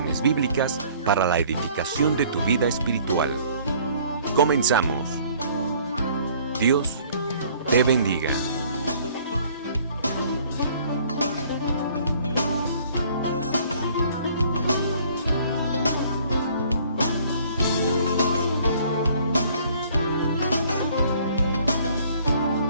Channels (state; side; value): inverted; both; correlation -0.57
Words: bíblicas para la edificación de tu vida espiritual. Comenzamos. Dios te bendiga.